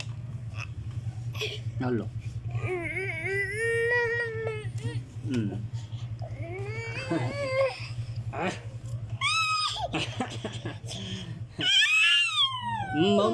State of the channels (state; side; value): identical; both; correlation 1.00